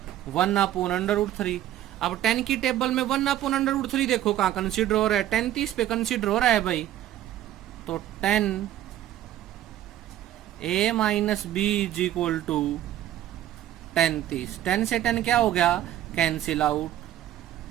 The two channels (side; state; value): left; quieter; 12.7 dB